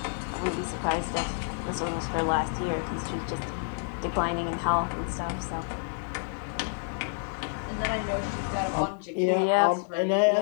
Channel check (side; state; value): right; silent; 59 dB below the other